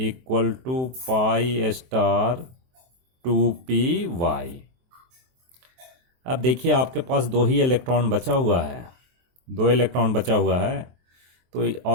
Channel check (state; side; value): late; left; 23 ms